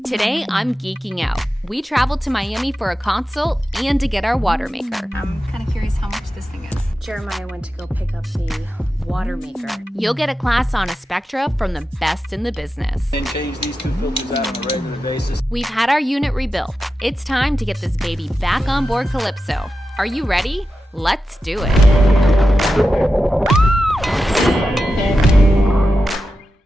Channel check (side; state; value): both; normal; correlation 0.91